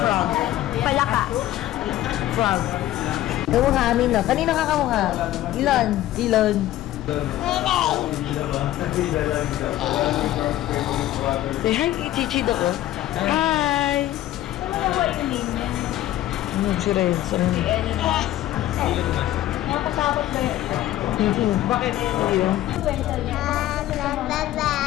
Palaka. Frog. Kamukha amin, no? Kanino ka kamukha? Ilon. Ilon. Say hi kay Chichi ko. Hi! Si Renzo. Nakasabot ba yun? Bakit?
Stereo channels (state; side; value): quieter; right; 14.2 dB